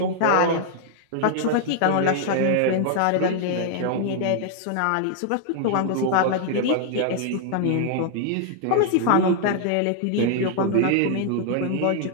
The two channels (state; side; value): different; both; correlation -0.01